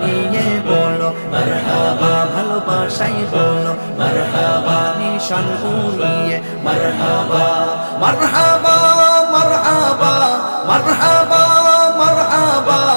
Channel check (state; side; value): inverted; both; correlation -1.00